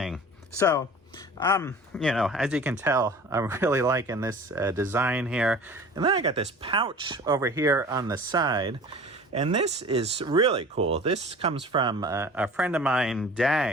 So, you know, as you can tell, I'm really liking this design here. And then I got this pouch over here on the side, and this is really cool. This comes from a friend of mine,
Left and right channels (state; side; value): normal; both; correlation 0.42